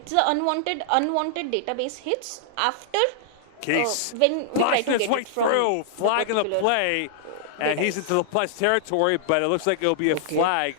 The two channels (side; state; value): both; different; correlation -0.01